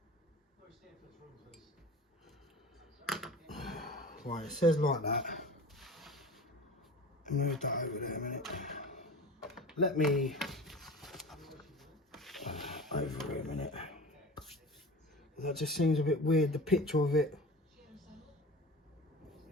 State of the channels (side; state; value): both; normal; correlation 0.35